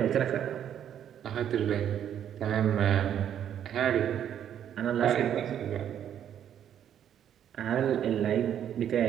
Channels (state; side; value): quieter; left; 9.7 dB